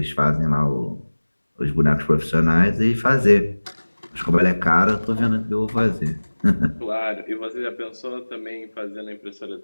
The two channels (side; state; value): both; inverted; correlation -1.00